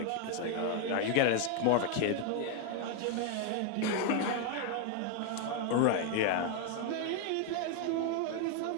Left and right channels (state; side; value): different; both; correlation 0.01